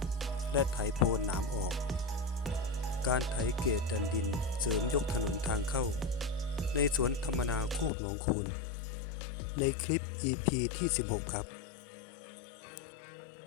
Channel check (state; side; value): drops out; right; at 7.9 s